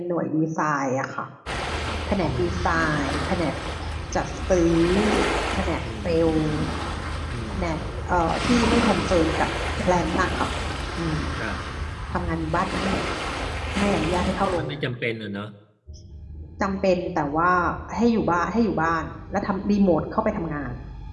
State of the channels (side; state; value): both; identical; correlation 1.00